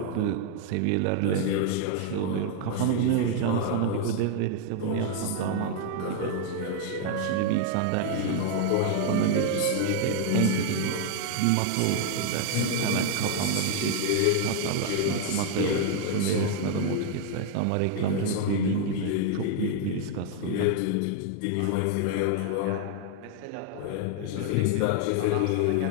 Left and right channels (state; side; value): different; both; correlation 0.00